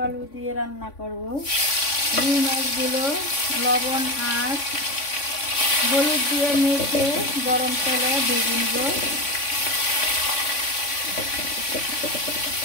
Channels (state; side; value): late; right; 3.5 ms